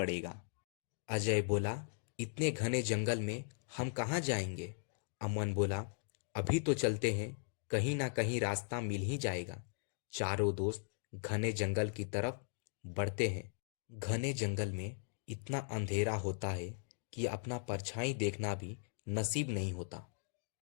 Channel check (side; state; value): right; silent; digital silence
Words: अजय बोला, इतने घने जंगल में हम कहाँ जाएंगे? अमन बोला, अभी तो चलते हैं, कहीं ना कहीं रास्ता मिल ही जाएगा। चारों दोस्त घने जंगल की तरफ बढ़ते हैं। घने जंगल में इतना अंधेरा होता है कि अपना परछाई देखना भी नसीब नहीं होता।